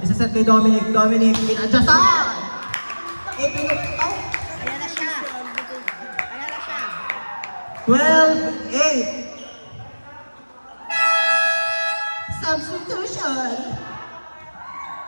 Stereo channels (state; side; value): inverted; both; correlation -1.00